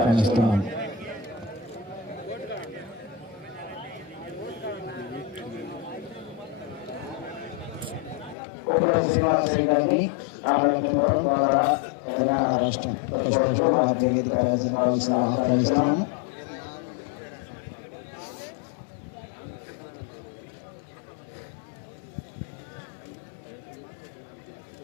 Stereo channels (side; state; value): right; drops out; at 8.3 s